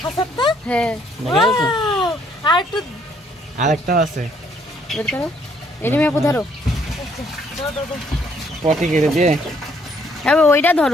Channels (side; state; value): both; normal; correlation 0.67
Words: হাসাবটা হ্যাঁ দেখাইছো আর একটু আরেকটা আছে বের করো এনে মেয়ে ধরো পটি কেটে দিয়ে এবার ওইটা ধরো